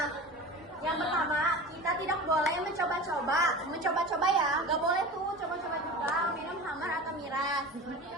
yang pertama, kita tidak boleh mencoba-coba ya. Gak boleh tuh coba-coba juga minum khamar atau miras.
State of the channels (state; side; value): normal; both; correlation 0.33